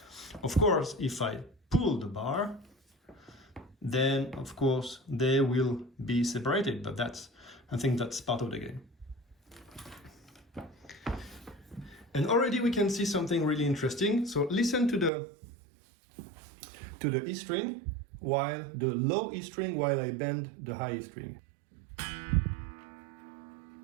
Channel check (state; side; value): drops out; left; at 15.1 s